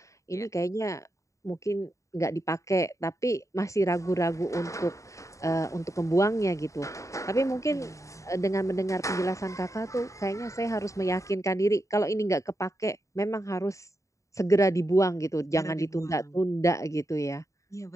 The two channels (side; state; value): right; late; 0.15 ms